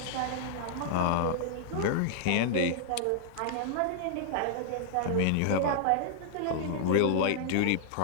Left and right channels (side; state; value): both; different; correlation -0.01